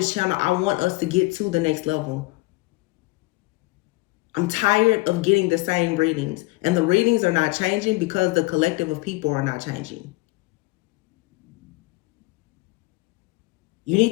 channel, I want us to get to the next level. I'm tired of getting the same readings, and the readings are not changing because the collective of people are not changing. You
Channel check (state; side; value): quieter; right; 22.7 dB